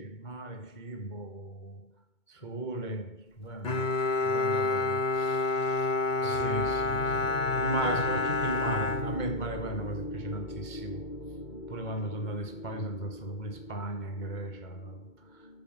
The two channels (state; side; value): late; right; 2.2 ms